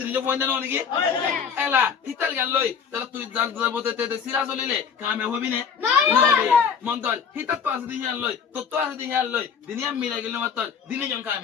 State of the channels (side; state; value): right; quieter; 6.8 dB